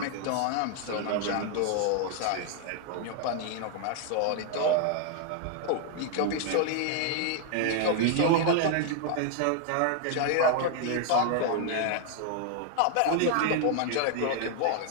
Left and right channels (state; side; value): different; both; correlation 0.00